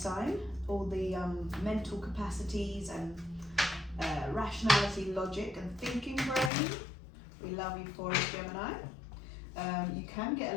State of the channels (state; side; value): drops out; right; at 6.5 s